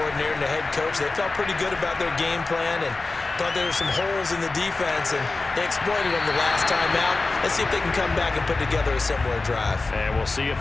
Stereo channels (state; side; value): quieter; right; 3.5 dB